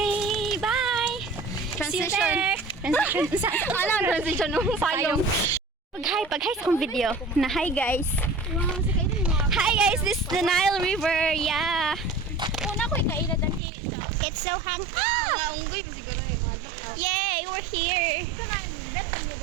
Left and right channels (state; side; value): drops out; left; at 13.6 s